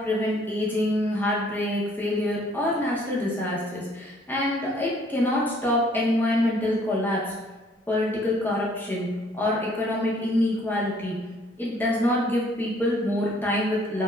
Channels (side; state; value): both; normal; correlation 0.61